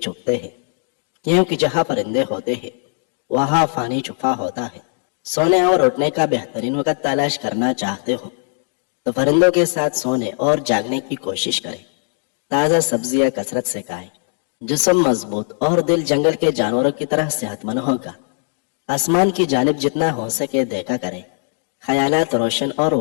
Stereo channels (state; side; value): silent; right; 66 dB below the other